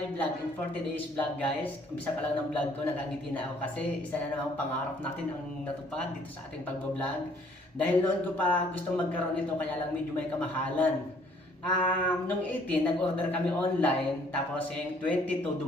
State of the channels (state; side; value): normal; both; correlation 0.61